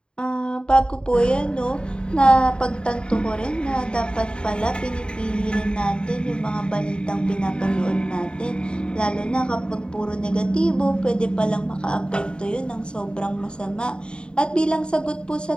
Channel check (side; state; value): right; late; 0.051 ms